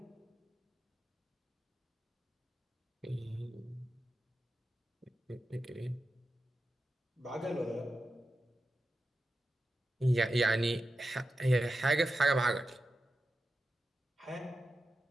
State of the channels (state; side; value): normal; both; correlation 0.91